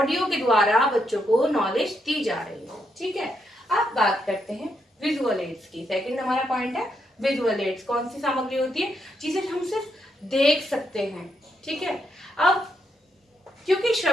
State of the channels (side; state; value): both; normal; correlation 0.79